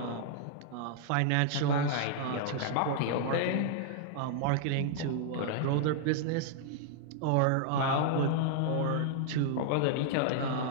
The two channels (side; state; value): both; different; correlation -0.01